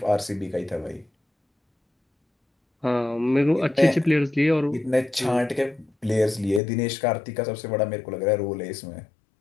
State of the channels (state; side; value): drops out; right; at 6.6 s